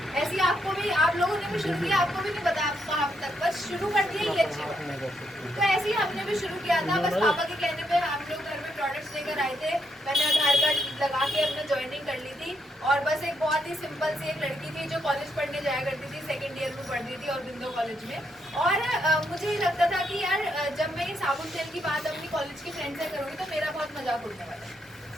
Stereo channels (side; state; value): both; normal; correlation 0.78